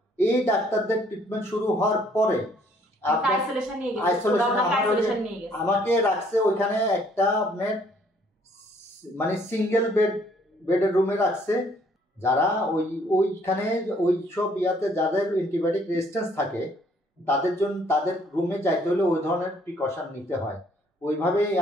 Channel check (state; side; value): normal; both; correlation 0.63